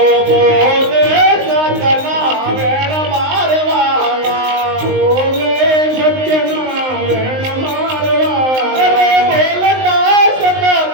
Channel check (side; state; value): left; late; 19 ms